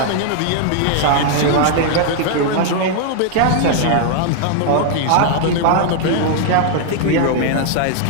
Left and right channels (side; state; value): both; different; correlation 0.00